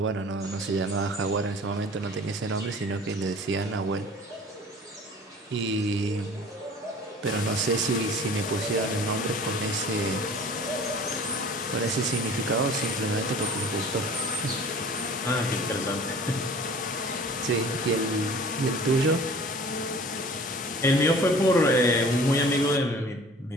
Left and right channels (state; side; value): normal; both; correlation 0.45